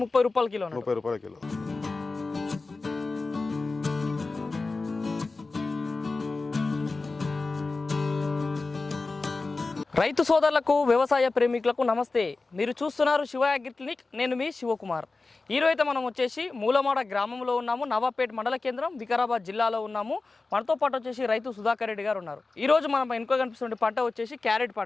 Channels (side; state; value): right; quieter; 3.7 dB